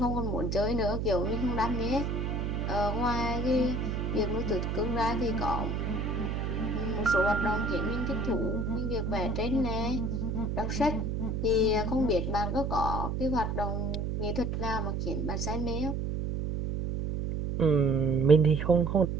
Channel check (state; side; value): noise; right; hum, 1 dB below the sound